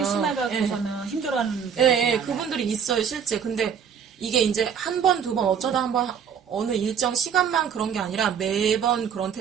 심해가지고서는 힘들어하는 분들이 예, 많아요. 그분들이 있어요, 실제. 근데 이게 이제 한 번, 두 번, 어쩌다 한 번, 어느 일정 시간만 그런 게 아니라 매번 그런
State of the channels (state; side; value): quieter; left; 7.5 dB